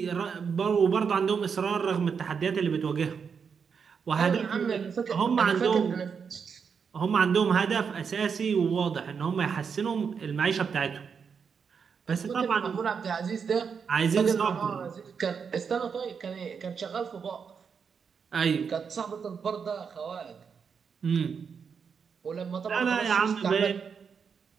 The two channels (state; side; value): quieter; left; 6.3 dB